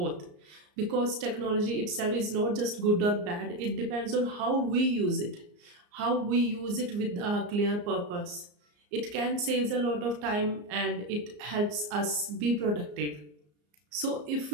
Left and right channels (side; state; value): left; late; 34 ms